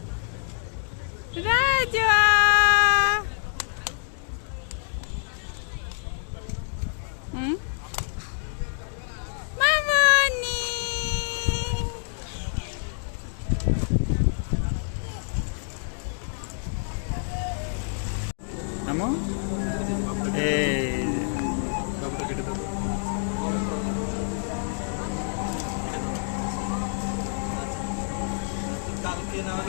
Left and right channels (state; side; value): silent; right; digital silence